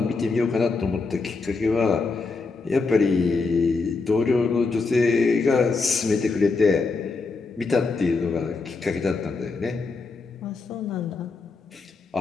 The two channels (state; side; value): quieter; right; 4.2 dB